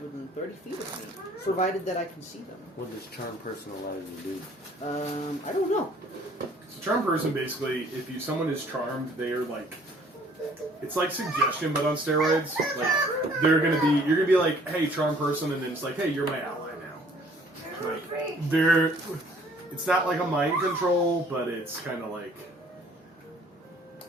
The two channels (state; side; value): normal; both; correlation 0.57